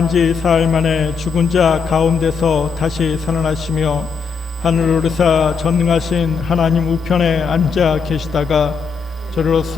지 사흘 만에 죽은 자 가운데서 다시 살아나시며 하늘 오르사 전능하신 하나님 우편에 앉아 계시다가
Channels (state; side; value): quieter; right; 5.6 dB